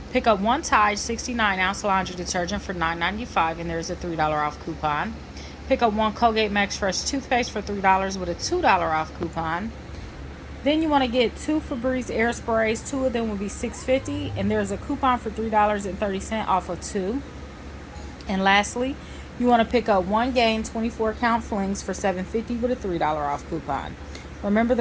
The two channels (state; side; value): identical; both; correlation 1.00